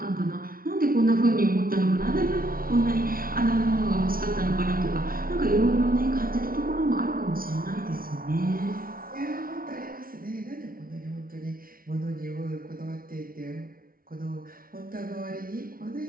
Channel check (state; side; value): late; left; 0.42 ms